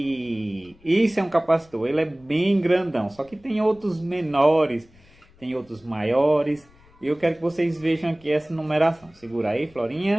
isso é um capacitor, ele é bem grandão, só que tem outros menores, tem outros maiores. E eu quero que vocês vejam aqui essa numeração. Segura aí,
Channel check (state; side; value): noise; left; rumble, 29 dB below the sound